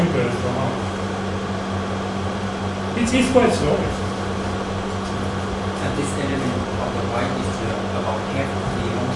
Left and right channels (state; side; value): identical; both; correlation 1.00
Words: or not. It's quite slow. And this element of the y is about half of the